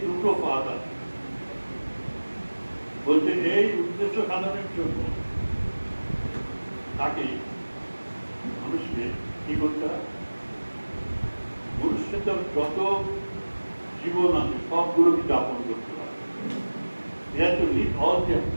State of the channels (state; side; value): inverted; both; correlation -1.00